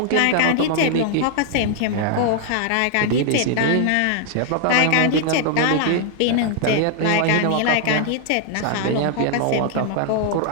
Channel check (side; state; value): both; different; correlation 0.00